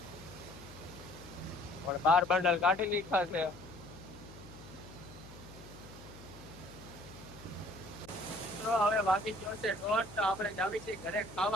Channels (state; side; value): noise; left; hum, 17 dB below the sound